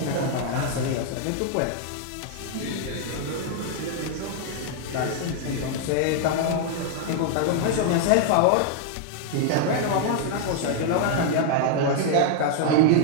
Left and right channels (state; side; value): different; both; correlation 0.00